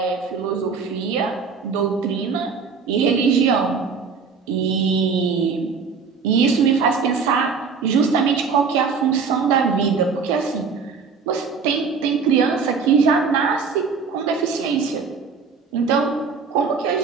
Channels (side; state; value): left; quieter; 5.4 dB